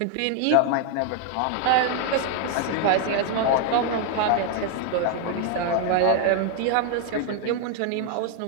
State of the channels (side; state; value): both; different; correlation 0.00